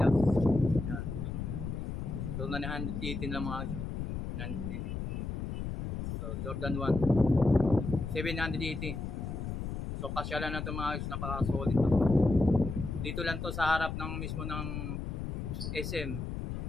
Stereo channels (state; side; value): noise; left; rumble, 4 dB below the sound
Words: Ayan. So 918 lang mga guys, 918. So Jordan 1 780. So kasyalan na ito mga guys, napaka solid na to. Dito lang to sa harap ng mismo ng SM